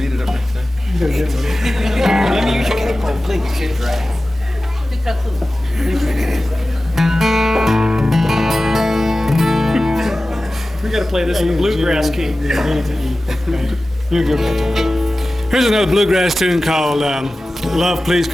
it up next time. Let me use your capo, please. We got to play this in the bluegrass key. You're good. Here's another bluegrass tune called "Love, Please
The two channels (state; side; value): normal; both; correlation 0.96